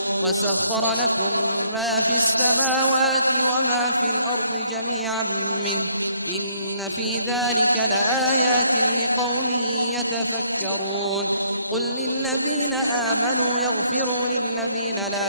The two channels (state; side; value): inverted; both; correlation -0.66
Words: वसख़्ख़र लकुम मा फ़िस्समावाति वमा फ़िल अर्दि जमीअन मिन्हु इन्न फ़ी ज़ालिका लआयातिन लिक़ौमिन यतफ़क्करून क़ुल लिल्लज़ीन आमनू यग़फ़िरू लिल्लज़ीन